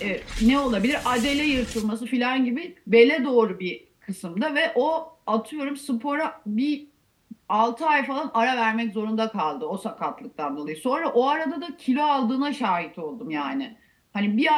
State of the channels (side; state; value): both; identical; correlation 1.00